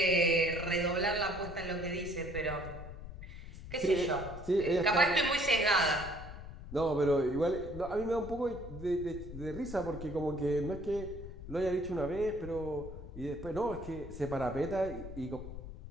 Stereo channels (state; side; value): noise; left; rumble, 12 dB below the sound